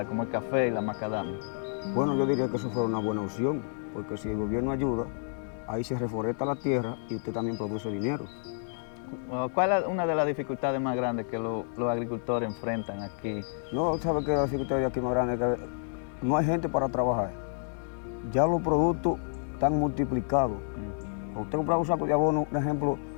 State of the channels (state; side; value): silent; right; digital silence